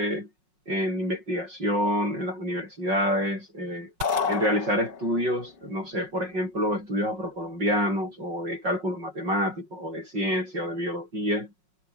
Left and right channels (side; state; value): left; late; 5.2 ms